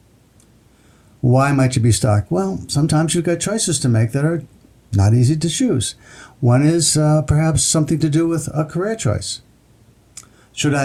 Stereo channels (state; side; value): identical; both; correlation 1.00